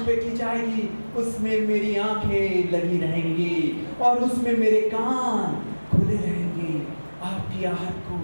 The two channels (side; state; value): both; inverted; correlation -1.00